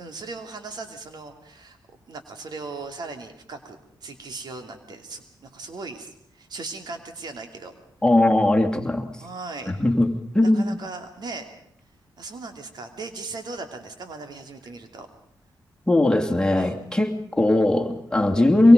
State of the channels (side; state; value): both; normal; correlation 0.94